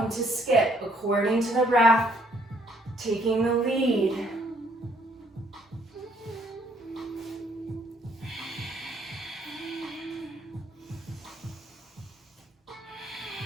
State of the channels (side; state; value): both; normal; correlation 0.66